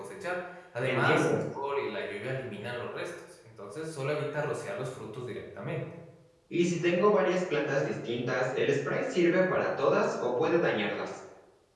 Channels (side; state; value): both; identical; correlation 1.00